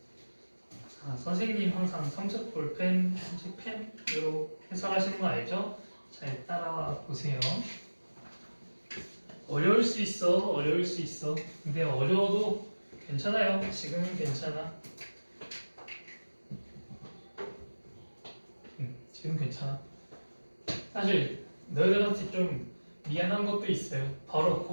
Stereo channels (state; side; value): inverted; both; correlation -1.00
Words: 선생님 항상 삼색 볼펜, 삼색 펜으로 해설하시는 거 알죠? 잘 따라와 보세요. 어려울 수 있어, 어려울 수 있어. 근데 어려워도 괜찮아요. 지금은 괜찮아. 지금 괜찮아. 사실 너희들한테 좀 미안한 것도 있어요. 바로